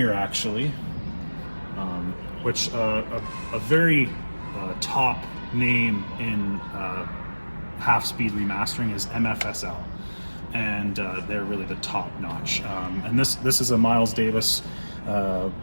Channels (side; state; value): both; inverted; correlation -1.00